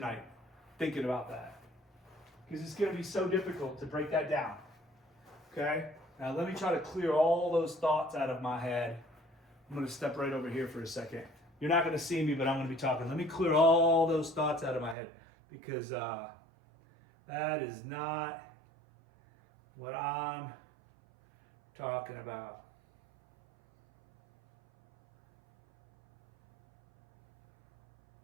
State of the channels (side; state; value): left; drops out; at 15.0 s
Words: thinking about that, because it's gonna be so difficult to break that down. Okay? Now let me try to clear all those thoughts out of my head. I'm gonna step right over here for a second. You're not gonna see me, but I'm gonna be talking. Let me clear all those thoughts out of my head, because that is not what I'm talking about.